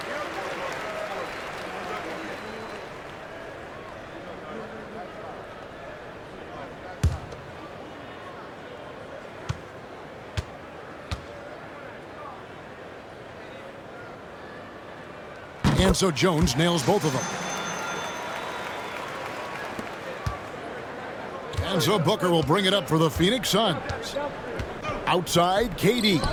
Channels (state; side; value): identical; both; correlation 1.00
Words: And so Jones nails both of them. And so Booker will bring it up for the Phoenix Suns. Outside, KD.